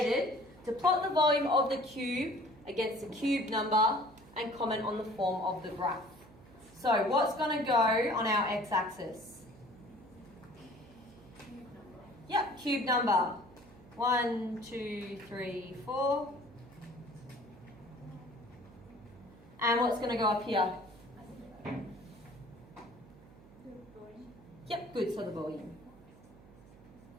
to plot the volume of the cube against the cube number and comment on the form of the graph. So what's going to go on our x-axis? Yep, cube number. 1, 2, 3, 4. And what's going to go up here? Yep, good, so the volume.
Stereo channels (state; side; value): noise; right; hum, 22 dB below the sound